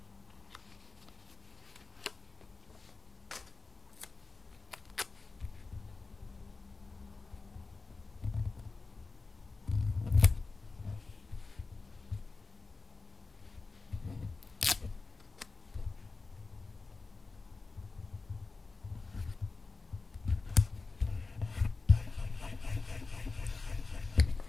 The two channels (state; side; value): quieter; right; 3.8 dB